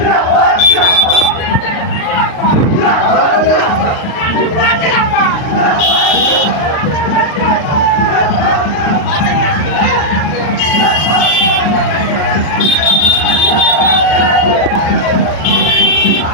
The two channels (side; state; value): right; late; 39 ms